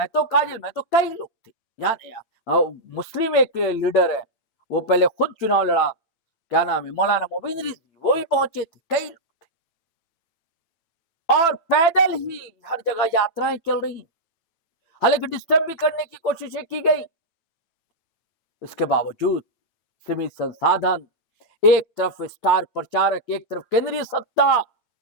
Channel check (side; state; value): right; late; 9.0 ms